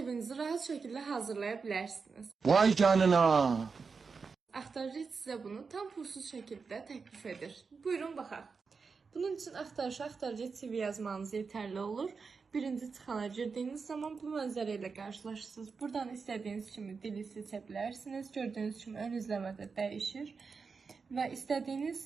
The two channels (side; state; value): left; quieter; 5.0 dB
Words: rahat şəkildə hazırlaya bilərsiniz. Vay canına. Axtarıcı sizə bunu tam pulsuz şəkildə təklif edir. Buyurun baxaq. Bunun üçün axtarıcı CV yazmanız yetərli olur. Birinci çıxana girdiyiniz zaman bu mənzərə ilə qarşılaşırsınız. Buradan istədiyiniz kimi dili seçə bilərsiniz. Gördüyünüz kimi ön izləmədə dəyişir. Və istədiyiniz